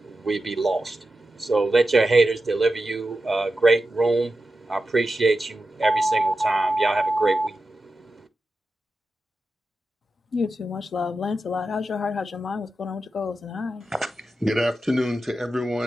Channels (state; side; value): normal; both; correlation 0.91